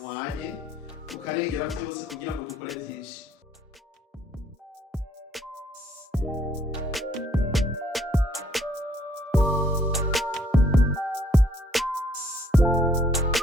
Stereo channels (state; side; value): normal; both; correlation 0.64